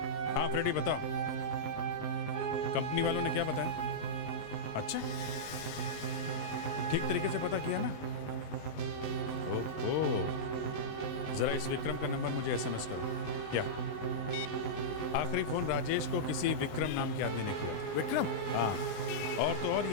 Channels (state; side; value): late; right; 20 ms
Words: हाँ फ्रेडी बताओ, कंपनी वालों ने क्या बताया? अच्छा, ठीक तरीके से पता किया ना? ओहो, जरा इस विक्रम का नंबर मुझे एसएमएस करो। क्या आखिरी फोन राजेश को किसी विक्रम नाम के आदमी ने किया था। विक्रम? हाँ, और तो और